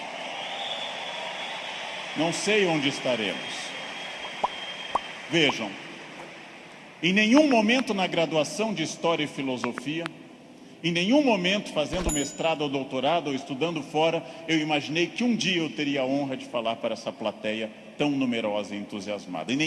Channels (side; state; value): both; identical; correlation 1.00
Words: Não sei onde estaremos. Vejam, em nenhum momento na graduação de História e Filosofia, em nenhum momento fazendo mestrado ou doutorado ou estudando fora, eu imaginei que um dia eu teria a honra de falar para essa plateia tão numerosa e entusiasmada. Em